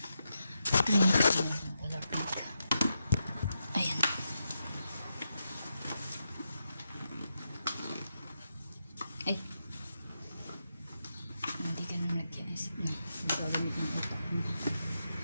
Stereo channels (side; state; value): both; inverted; correlation -0.86